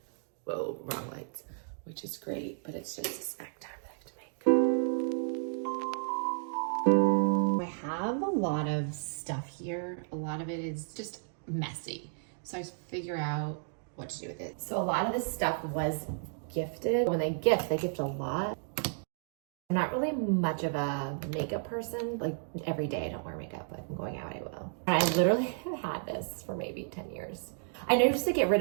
Whoa, wrong lights. Which is great, but it's just a snack time that I have to make. I have a lot of stuff here. A lot of it is just messy. So I figure out what to do with it. So a lot of this stuff was gifted. When they gift a lot. I'm not really much of a makeup person. Like every day I don't wear makeup, but if I'm going out, I will. And I literally have had this for maybe 10 years. I know you're supposed to get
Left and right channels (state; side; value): silent; left; digital silence